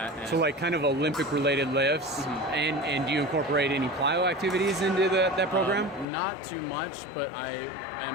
And so like kind of Olympic related lifts. Mm-hmm. And do you incorporate any plyo activities into that program? Not too much, but I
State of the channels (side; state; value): right; drops out; at 6.1 s